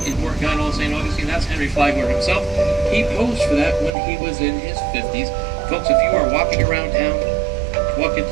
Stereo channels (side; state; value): left; drops out; at 3.9 s